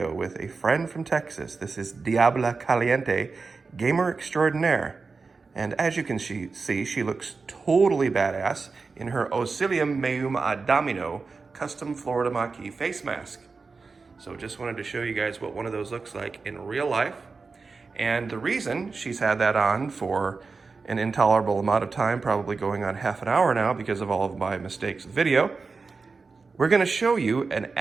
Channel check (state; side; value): quieter; left; 4.4 dB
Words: with a friend from Texas. This is Diabla Caliente, gamer extraordinaire. And as you can see, she looks totally badass in her Osilium Meum Adamino custom Florida Maquis face mask. So just wanted to show you guys what one of those looks like in real life. And the reason she's had that on for an intolerable amount of time, probably going on half an hour now because of all of my mistakes with video, we're going to show you an